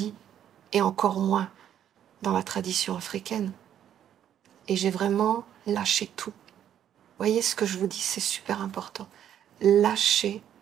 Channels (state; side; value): quieter; left; 10.1 dB